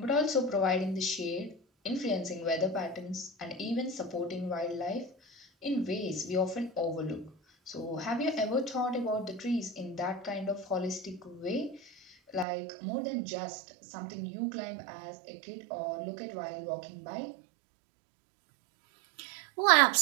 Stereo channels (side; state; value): left; drops out; at 12.5 s